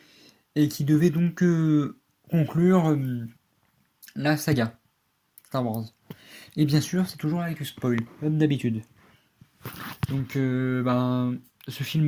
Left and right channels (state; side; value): identical; both; correlation 1.00